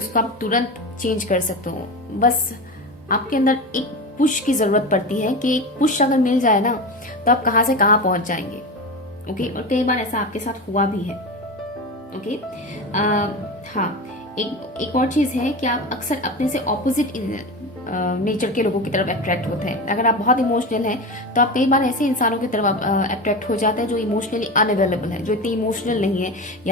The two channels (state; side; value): normal; both; correlation 0.25